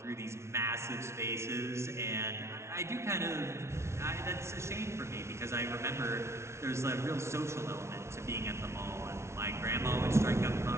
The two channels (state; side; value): late; left; 0.13 ms